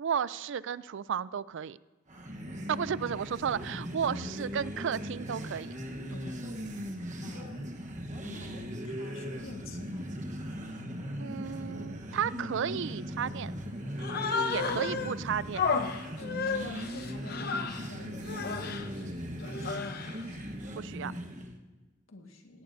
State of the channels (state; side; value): normal; both; correlation 0.10